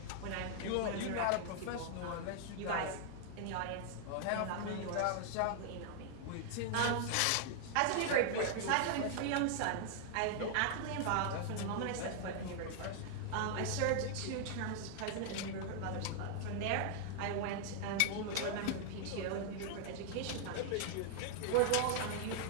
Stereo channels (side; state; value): both; different; correlation 0.00